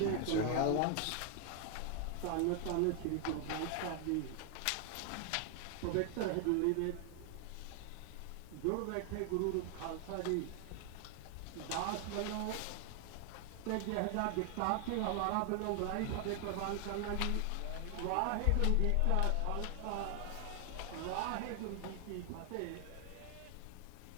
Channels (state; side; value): different; both; correlation 0.00